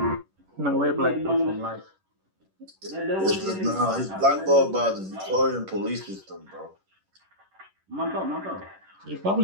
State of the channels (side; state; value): left; late; 11 ms